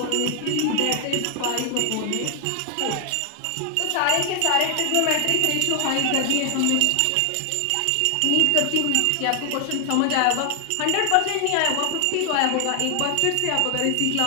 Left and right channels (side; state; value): both; different; correlation 0.00